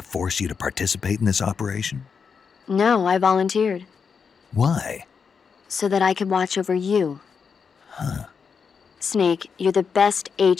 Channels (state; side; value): quieter; right; 6.0 dB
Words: force you to participate in this operation? No, I volunteered. Why? So that I could watch over you. Huh. Snake, you're the best